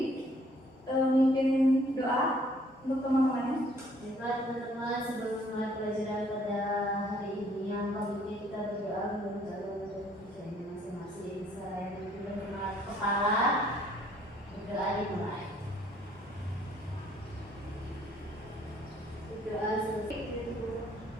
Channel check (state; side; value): normal; both; correlation 0.62